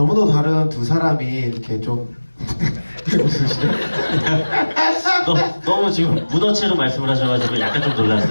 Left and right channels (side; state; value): both; inverted; correlation -1.00